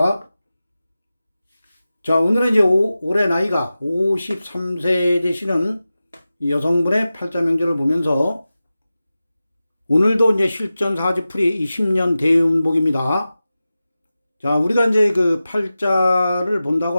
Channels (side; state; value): both; inverted; correlation -0.94